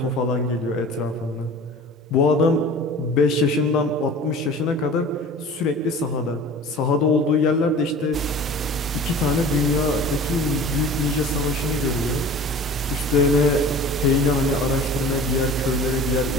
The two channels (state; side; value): normal; both; correlation 0.41